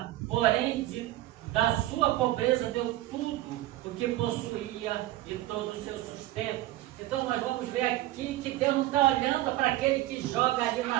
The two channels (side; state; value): left; quieter; 16.0 dB